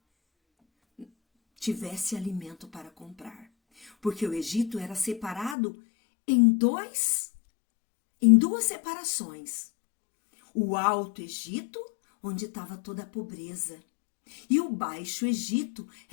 tivesse alimento para comprar. Porque o Egito era separado em duas separações. O Alto Egito, onde estava toda a pobreza, e o Baixo Egito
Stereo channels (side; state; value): right; drops out; at 5.6 s